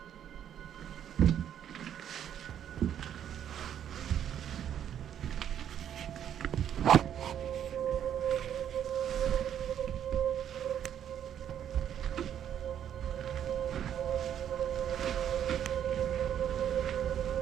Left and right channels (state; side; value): quieter; left; 9.7 dB